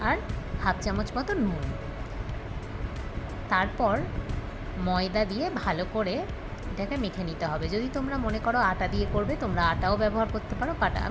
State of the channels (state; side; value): identical; both; correlation 1.00